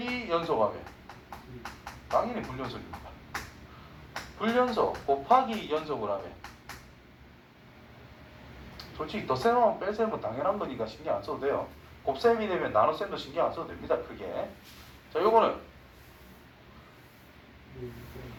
연속하면 당연히 불연속입니다. 불연속 곱하기 연속을 하면 솔직히 덧셈하면 뺄셈은 당연한 거니까 신경 안 써도 돼요. 곱셈이 되면 나눗셈도 신경 안 써도 됩니다. 크게. 자, 요거는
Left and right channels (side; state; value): both; identical; correlation 1.00